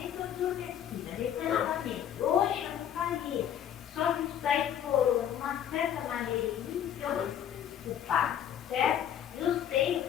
adormecida, recentemente. Hoje eu não faria. Só que isso daí explorou de uma certa maneira em mim que eu culpado, certo? Eu sei,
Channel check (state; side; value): quieter; right; 9.9 dB